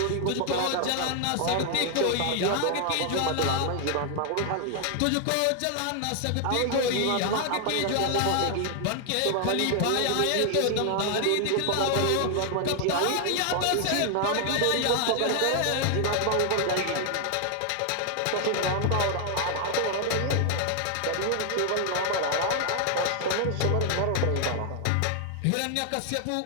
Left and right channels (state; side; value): different; both; correlation 0.00